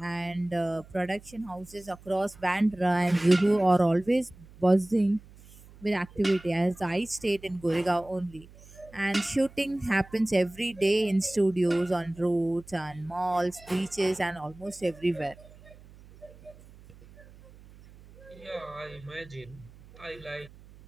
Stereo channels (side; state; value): right; noise; hum, 22 dB below the sound